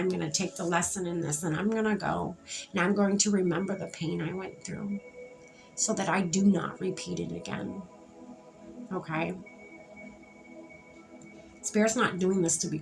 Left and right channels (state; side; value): identical; both; correlation 1.00